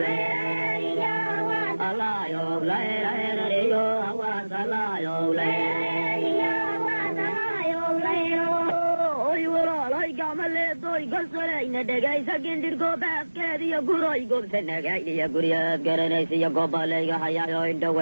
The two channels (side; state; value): both; inverted; correlation -1.00